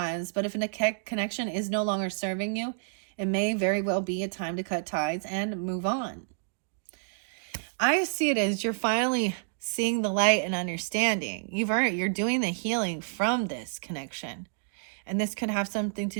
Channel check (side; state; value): left; silent; digital silence